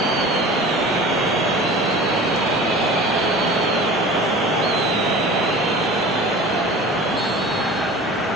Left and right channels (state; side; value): normal; both; correlation 0.39